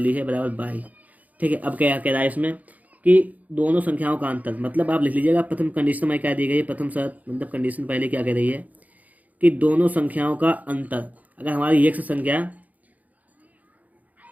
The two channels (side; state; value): left; late; 0.077 ms